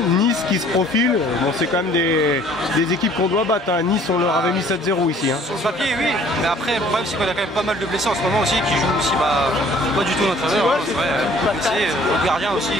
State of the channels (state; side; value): normal; both; correlation 0.55